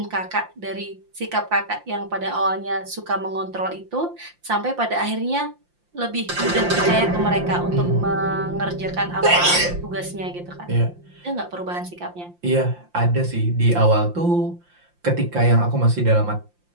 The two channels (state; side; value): late; left; 5.7 ms